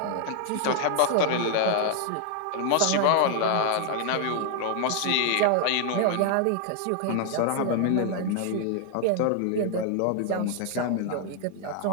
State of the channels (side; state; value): both; different; correlation 0.00